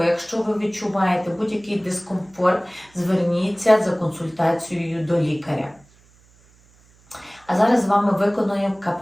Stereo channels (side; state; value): right; noise; hum, 30 dB below the sound